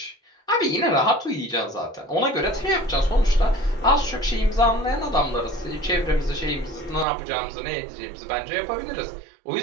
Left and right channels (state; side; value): drops out; left; at 7.1 s